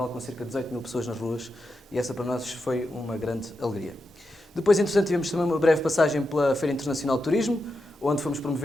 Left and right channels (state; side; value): normal; both; correlation 0.87